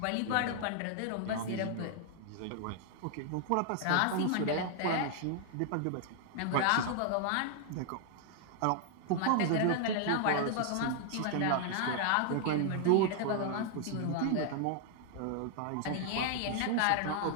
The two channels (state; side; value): different; both; correlation 0.00